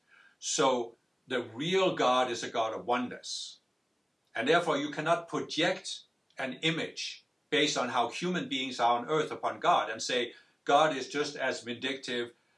So the real God is a God of oneness. And therefore you cannot project an image based on how human beings are on earth upon God and say God is just as vindictive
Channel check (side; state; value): both; identical; correlation 1.00